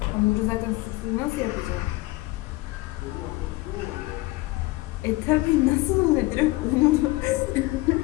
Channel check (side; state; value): right; quieter; 20.8 dB